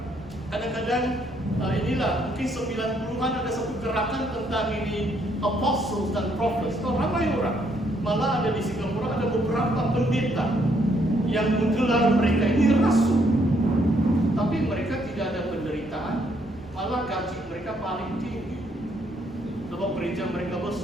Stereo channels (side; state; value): both; normal; correlation 0.70